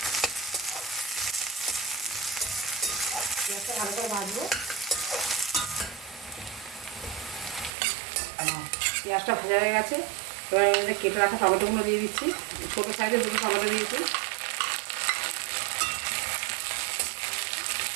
পেঁয়াজটা ভালো করে ভাজবো। পেঁয়াজটা ভাজা হয়ে গেছে। এবার এর মধ্যে কেটে রাখা টমেটোগুলো দিয়ে দিচ্ছি। ছোটো সাইজের 2টো টমেটো দিয়েছি।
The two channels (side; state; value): left; drops out; at 7.8 s